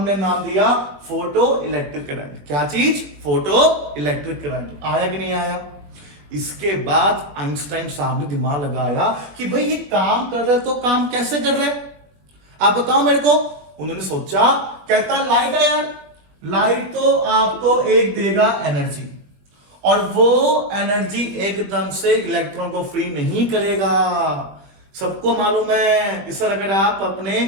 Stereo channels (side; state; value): left; late; 21 ms